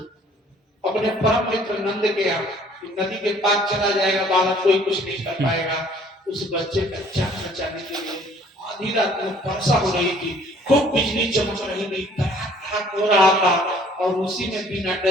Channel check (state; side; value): normal; both; correlation 0.57